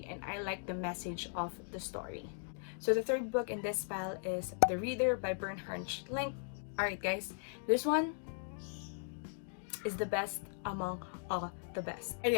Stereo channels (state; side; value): silent; right; digital silence